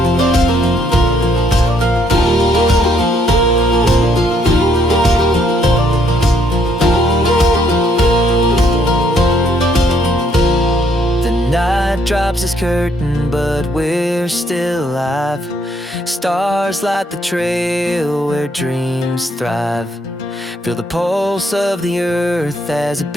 Drops its curtain, but we're still alive. Stars light the trail where dreams thrive. Feel the pulse of the earth as it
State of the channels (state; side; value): normal; both; correlation 0.70